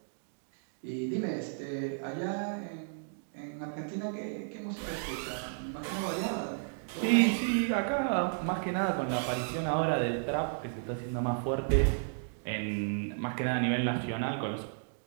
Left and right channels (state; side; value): silent; left; digital silence